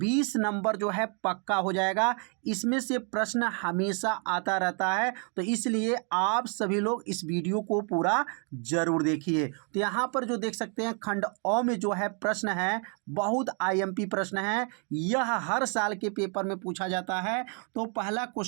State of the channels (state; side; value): quieter; left; 39.3 dB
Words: नंबर जो है पक्का हो जाएगा। इसमें से प्रश्न हमेशा आता रहता है, तो इसलिए आप सभी लोग इस वीडियो को पूरा जरूर देखिए। तो यहाँ पर जो देख सकते हैं खंड अ में जो है प्रश्न है, बहुत आईएमपी प्रश्न है। यह हर साल के पेपर में पूछा जाता है। तो पहला